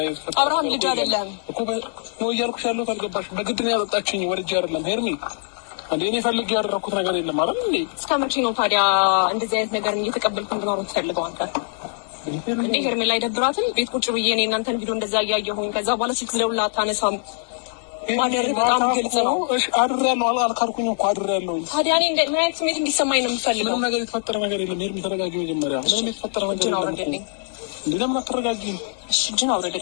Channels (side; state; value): right; silent; 59 dB below the other